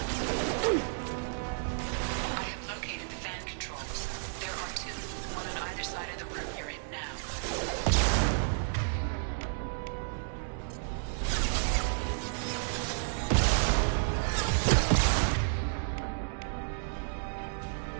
I have located the fan controls. There are two, one on either side of the room you're in now.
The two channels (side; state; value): left; silent; digital silence